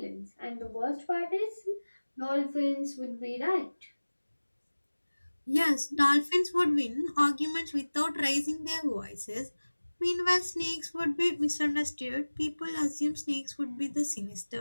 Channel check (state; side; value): inverted; both; correlation -1.00